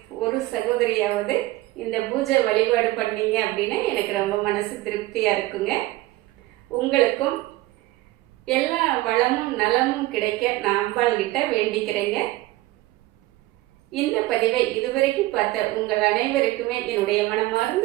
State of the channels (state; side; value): quieter; left; 18.2 dB